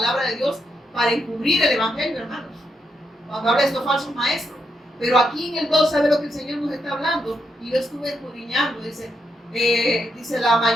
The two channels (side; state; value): both; normal; correlation 0.81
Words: de Dios para encubrir el Evangelio, hermanos. Cuando habla de estos falsos maestros. Pero aquí en el 2, ¿sabe lo que el Señor nos está hablando? Y yo estuve escudriñando, dice la